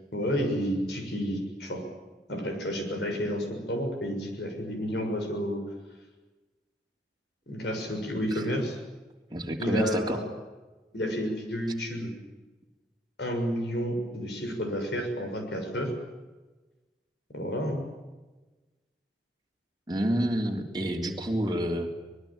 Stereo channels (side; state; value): both; normal; correlation 0.65